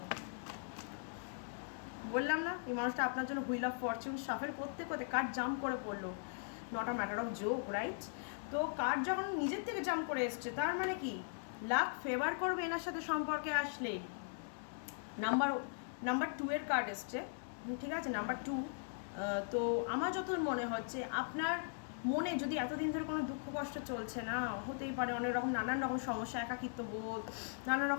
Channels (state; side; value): silent; right; digital silence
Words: বললাম না এই মানুষটা আপনার জন্য হুইল অফ ফরচুন সাফেল করতে করতে কার্ড জাম্প করে পড়লো, not a matter of joke, right? তো কার্ড যখন নিজের থেকে জাম্প করে এসছে, তার মানে কি লাক ফেভার করবে এনার সাথে সম্পর্কে আসলে। নাম্বার 2 এর কার্ড এসছে, ঠিক আছে? নাম্বার 2। তো আমার যত মনে হচ্ছে আপনার মনে যদি এতদিন ধরে কোনো দুঃখ কষ্ট চলছে না, হতেই পারে অনেক রকম নানান রকম সমস্যা, একাকিত্ব বোধ, নানান